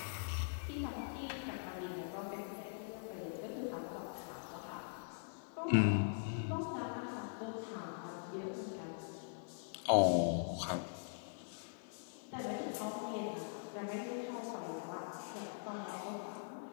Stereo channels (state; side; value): silent; right; digital silence